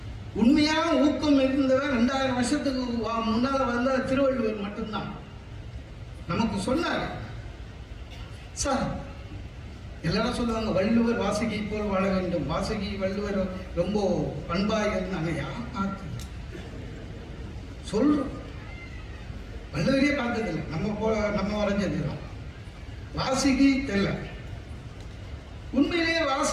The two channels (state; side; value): identical; both; correlation 1.00